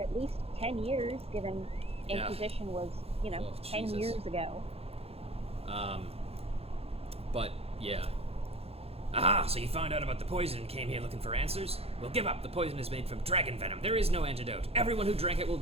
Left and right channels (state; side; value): late; left; 0.29 ms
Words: least 10 years, given Inquisition was, you know, 10 years ago. But, yeah. Aha, so you found out about the poison and came here looking for answers? Well, give up. The poison is made from dragon venom. There is no antidote. Everyone who drank it will